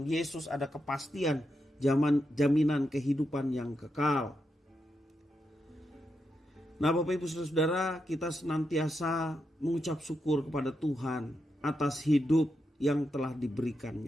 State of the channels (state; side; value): normal; both; correlation 0.85